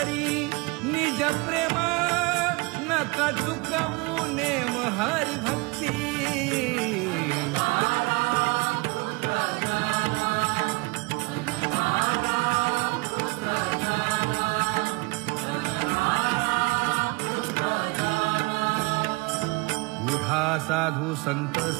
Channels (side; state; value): left; quieter; 25.8 dB